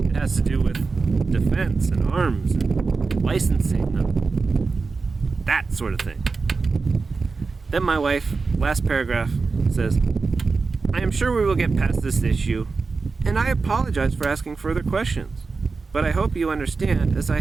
has to do with defense and arms and licensing and that sort of thing. Then my wife, last paragraph, says, I am sure we will get past this issue, and I apologize for asking further questions, but I hope you understand as I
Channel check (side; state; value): left; quieter; 4.4 dB